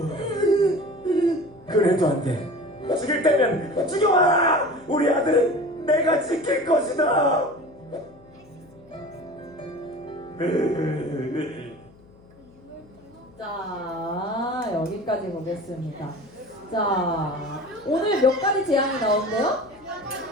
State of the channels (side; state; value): left; noise; hum, 26 dB below the sound